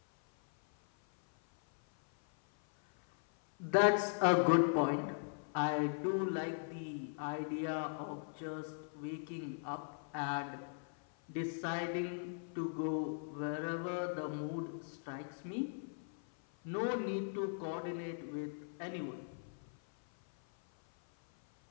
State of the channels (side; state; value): right; silent; 52 dB below the other